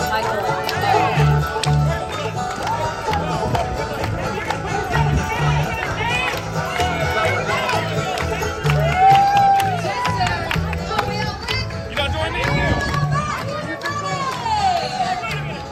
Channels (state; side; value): identical; both; correlation 1.00